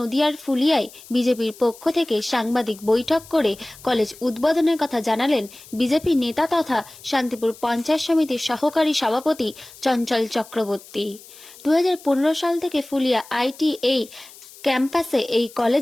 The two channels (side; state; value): left; noise; hiss, 20 dB below the sound